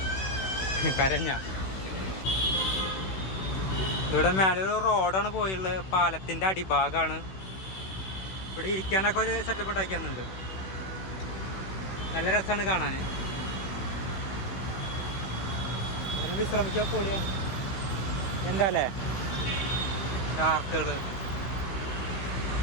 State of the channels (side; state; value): right; late; 16 ms